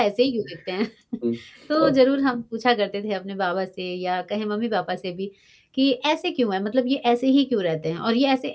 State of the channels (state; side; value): identical; both; correlation 1.00